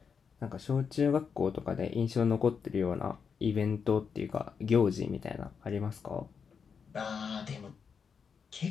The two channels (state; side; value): quieter; right; 6.2 dB